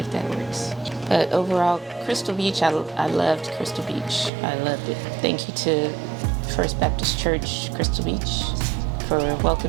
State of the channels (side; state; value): left; drops out; at 4.3 s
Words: that works. But overall, Crystal Beach, I loved Crystal Beach. I loved it. Thank you to First Baptist Church, Crystal Beach, for